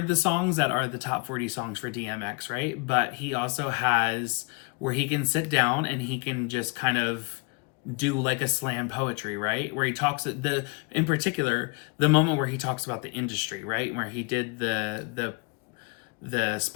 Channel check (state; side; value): quieter; right; 30.1 dB